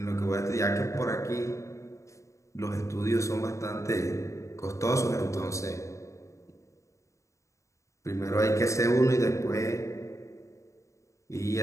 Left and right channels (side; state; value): right; late; 0.15 ms